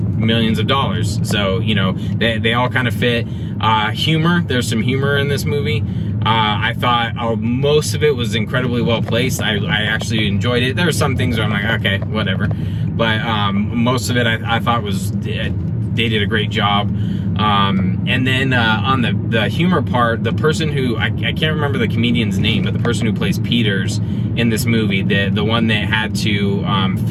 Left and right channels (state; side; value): identical; both; correlation 1.00